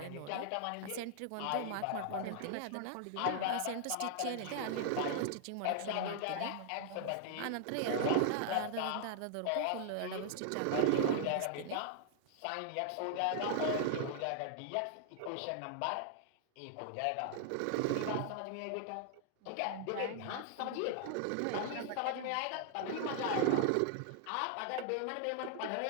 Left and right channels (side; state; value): both; different; correlation -0.01